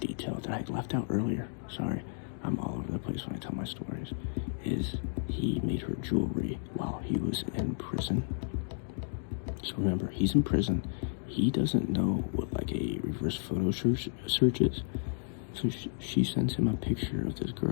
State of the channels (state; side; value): silent; right; digital silence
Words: detail that I left out earlier, sorry, I'm all over the place when I tell my stories, is he made her jewelry while he was in prison. So remember, he's in prison. He doesn't know what like a reverse photo search is. So she sends him a picture of this